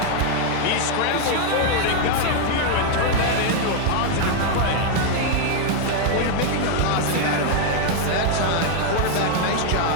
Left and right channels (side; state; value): both; different; correlation 0.00